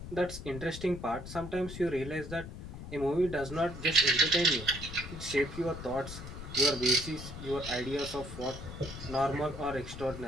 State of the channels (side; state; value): left; noise; rumble, 10 dB below the sound